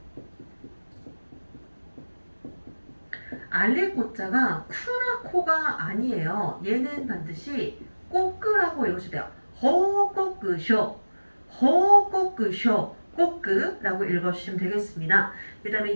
알릴 꽃자가 쿠나 코가 아니에요. 얘는 반드시 꼬끄라고 읽으셔야 돼요. 호꼬끄쇼, 호꼬끄쇼, 꼬끄라고 읽어주시면 되겠습니다. 그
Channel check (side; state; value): both; inverted; correlation -1.00